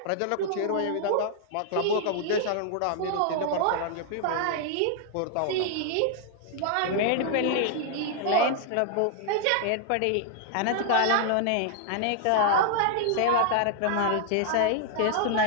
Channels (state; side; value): different; both; correlation 0.00